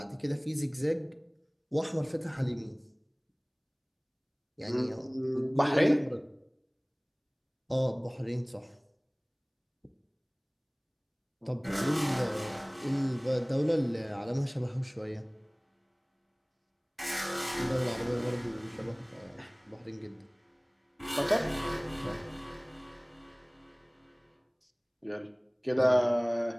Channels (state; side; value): identical; both; correlation 1.00